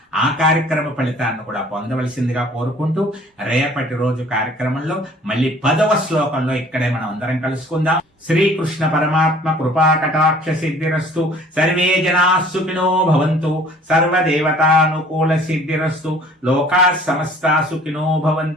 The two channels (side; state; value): both; normal; correlation 0.52